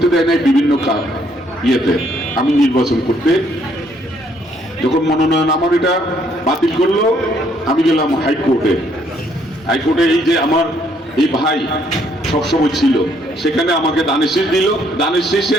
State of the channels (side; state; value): both; normal; correlation 0.68